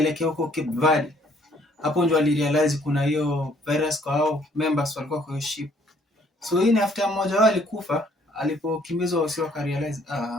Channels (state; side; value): normal; both; correlation 0.63